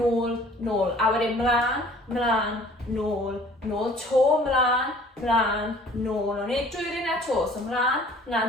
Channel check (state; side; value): normal; both; correlation 0.52